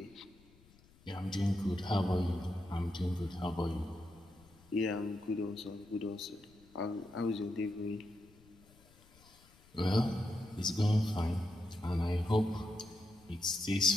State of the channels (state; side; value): noise; left; rumble, 27 dB below the sound